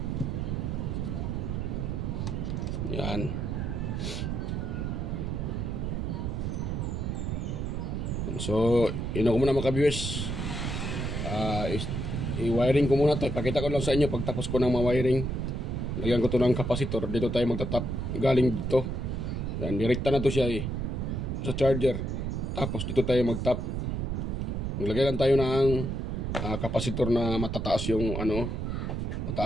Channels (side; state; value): right; noise; rumble, 2 dB below the sound